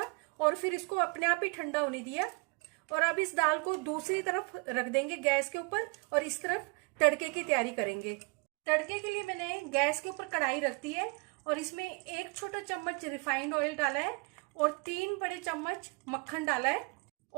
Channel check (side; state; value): left; quieter; 31.8 dB